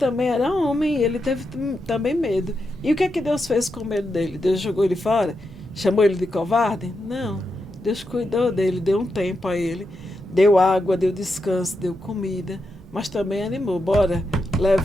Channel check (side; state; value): both; normal; correlation 0.86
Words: era homem, ele teve também medo. E o que é que Deus fez com o medo dele? Deus jogou ele fora? Chamou ele de covarde? Não. Deus cuidou dele, deu um tempo a ele. Deu água, deu descanso, deu comida, mas também animou. Bora,